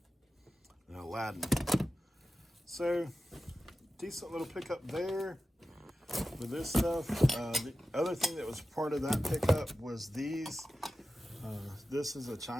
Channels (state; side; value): normal; both; correlation 0.94